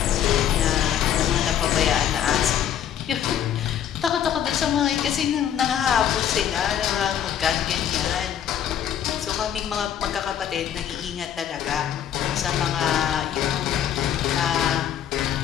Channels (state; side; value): quieter; right; 9.8 dB